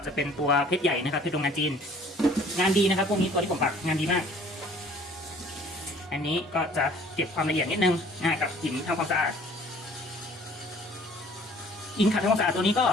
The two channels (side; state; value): both; normal; correlation 0.54